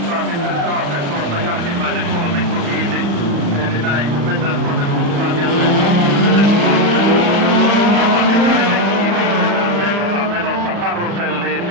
sitten taas tuossa jälkimmäinen kolmikko kyyti. Eli näin kun mennään tuonne mukaan jälleen Matikainen on menossa karuselliin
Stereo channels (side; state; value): left; late; 35 ms